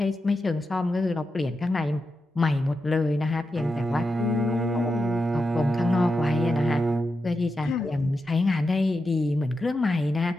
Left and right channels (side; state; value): both; normal; correlation 0.88